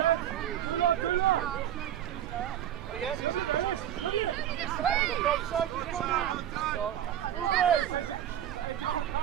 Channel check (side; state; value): left; quieter; 10.9 dB